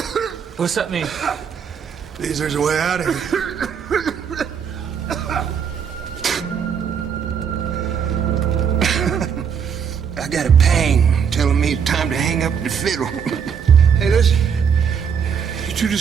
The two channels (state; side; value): quieter; left; 7.1 dB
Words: What's that mean? Means there's a way out of here. I got a pang telling me it's time to hang up the fiddle. Hey, listen. You two